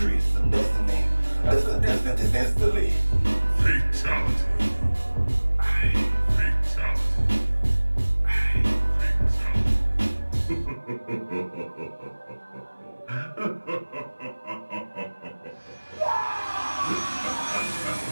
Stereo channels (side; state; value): both; inverted; correlation -1.00